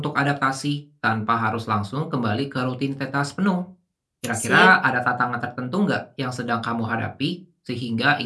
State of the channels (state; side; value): identical; both; correlation 1.00